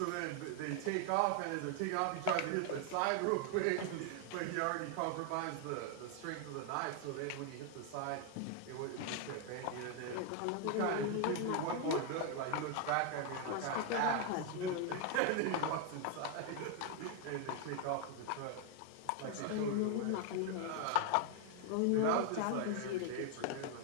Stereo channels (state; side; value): different; both; correlation 0.00